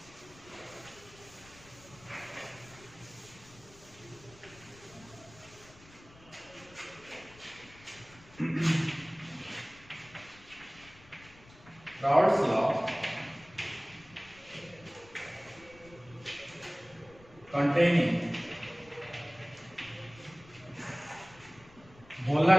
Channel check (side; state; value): left; noise; rumble, 23 dB below the sound